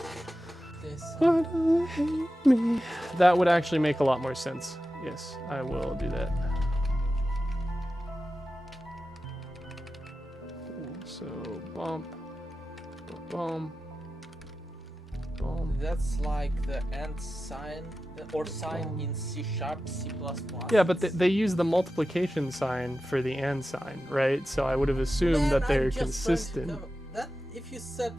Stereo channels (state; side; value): normal; both; correlation 0.93